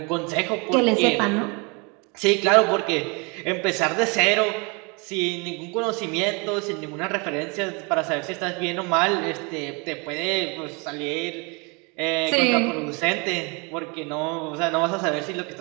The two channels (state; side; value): quieter; left; 30.5 dB